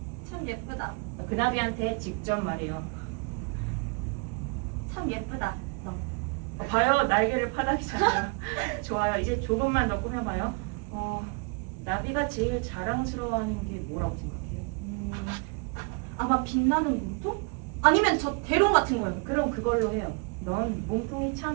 참 예쁘다. 그 나비한테 직접 말해요. 참 예쁘다. 너. 봐요, 날개를 파닥이잖아요. 좋아요. 이제 조금만 더 꾸며봐요. 나비가 제일 자랑스러워하는 게 뭐라고 생각해요? 아마 빛나는 몸통? 아니면 저 대롱 같은 거요. 그럼 그걸로 해요. 넌 몸통이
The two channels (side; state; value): left; quieter; 34.8 dB